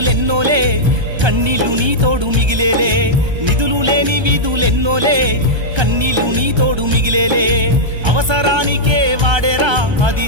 కన్నీళ్లు నీ తోడు మిగిలేలే నిధులు లేని విధులెన్నోలే కన్నీళ్లు నీ తోడు మిగిలేలే అవసరానికే వాడేరా అది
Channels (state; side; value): late; left; 1.3 ms